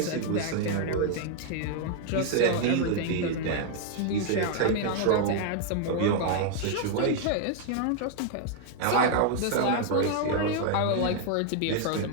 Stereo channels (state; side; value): different; both; correlation 0.00